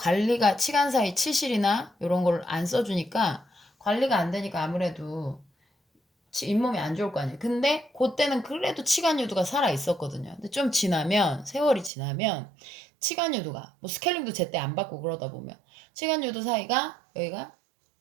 치간 사이 치실이나 이런 걸 안 써주니까 관리가 안 되니까 아무래도 잇몸이 안 좋을 거 아니에요. 근데 그때는 그래도 치간 유두가 살아 있었거든요. 근데 좀 지나면 세월이 지나면 치간 유두가 뭐 스케일링도 제때 안 받고 그러다 보면 치간 유두 사이가 여기가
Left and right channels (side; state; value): left; drops out; at 11.9 s